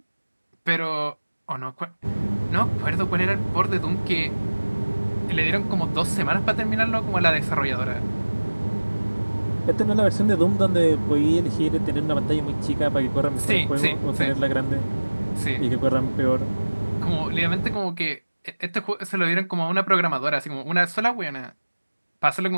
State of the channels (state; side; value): inverted; both; correlation -1.00